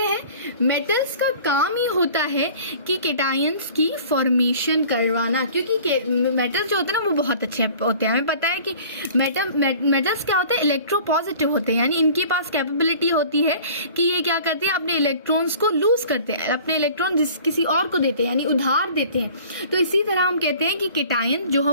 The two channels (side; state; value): both; inverted; correlation -0.47